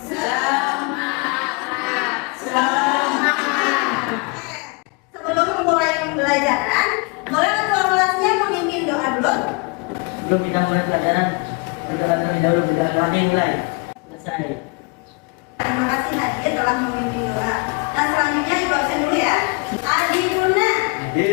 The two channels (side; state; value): right; quieter; 31.8 dB